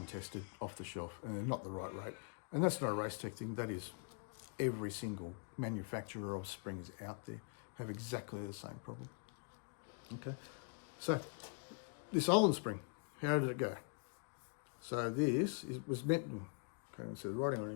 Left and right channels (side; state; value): right; quieter; 38.8 dB